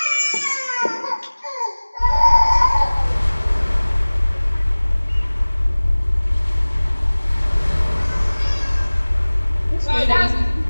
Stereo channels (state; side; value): inverted; both; correlation -1.00